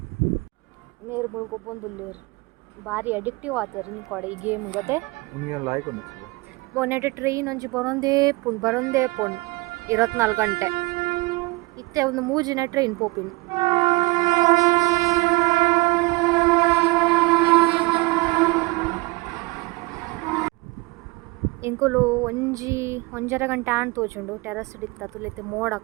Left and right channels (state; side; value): quieter; left; 23.7 dB